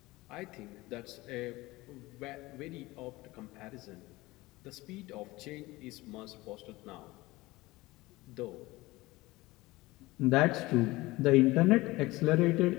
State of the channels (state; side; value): quieter; right; 20.2 dB